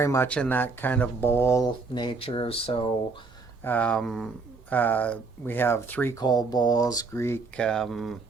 much in that kind of bowl nature. So we have 3 cold bowls, Greek,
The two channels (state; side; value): quieter; left; 4.2 dB